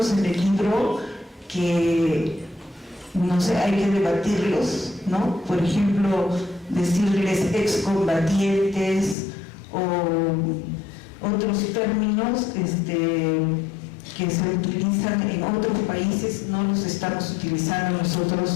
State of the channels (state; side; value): drops out; right; at 9.2 s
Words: en el libro que, no sé, hay que debatirlos, ¿no? Por ejemplo, decirles excombatientes o otros términos que se utilizan en otros países, no los estamos utilizando